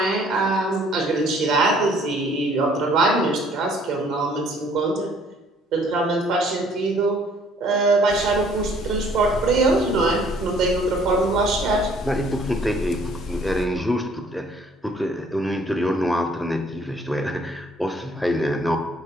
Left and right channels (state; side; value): normal; both; correlation 0.59